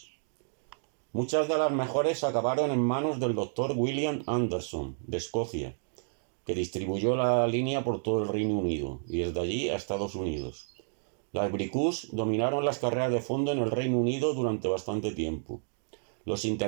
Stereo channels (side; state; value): left; silent; digital silence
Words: Muchas de las mejores acabaron en manos del Dr. William Anderson, de Escocia, que distribuyó la línea por todo el Reino Unido y desde allí a Estados Unidos. Las Bricus dominaron las carreras de fondo en el Reino Unido durante bastante tiempo. Los